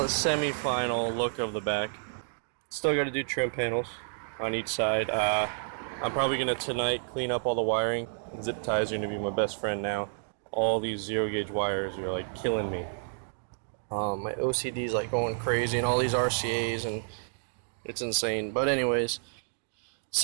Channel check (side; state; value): left; silent; digital silence